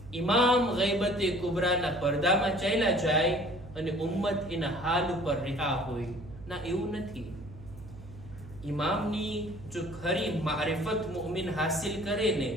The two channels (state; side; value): noise; right; hum, 16 dB below the sound